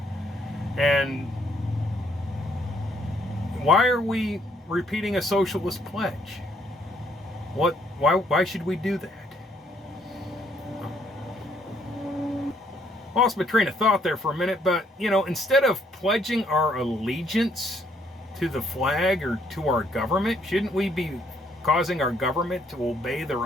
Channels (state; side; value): normal; both; correlation 0.69